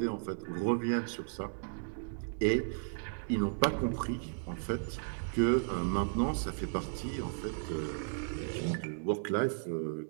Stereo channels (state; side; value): silent; left; digital silence